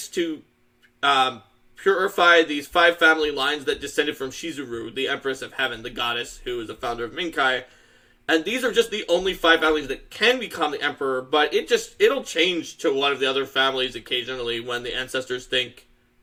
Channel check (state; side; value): identical; both; correlation 1.00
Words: to purify these 5 family lines that descended from Shizuru, the Empress of Heaven, the goddess who is the founder of Minkai. And these are just the only 5 families that can become the emperor, but it'll change to one of the other families occasionally when the ancestors think